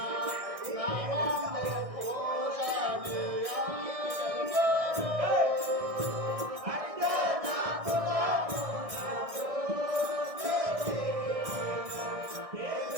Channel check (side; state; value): left; late; 1.6 ms